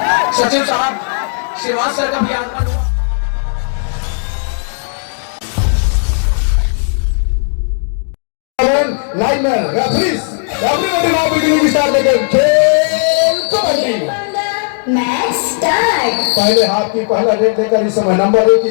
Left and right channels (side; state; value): right; silent; digital silence